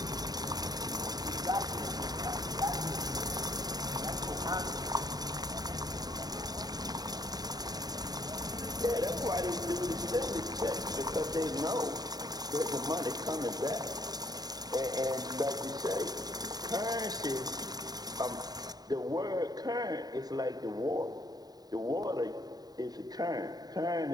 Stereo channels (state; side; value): late; left; 0.19 ms